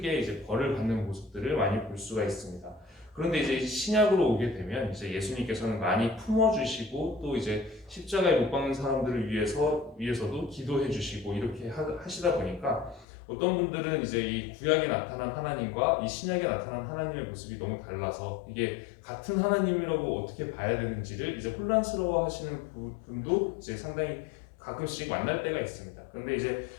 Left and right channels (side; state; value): right; drops out; at 13.1 s